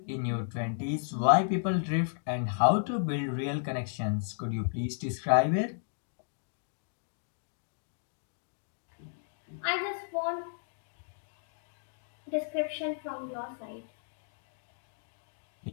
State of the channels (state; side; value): silent; right; digital silence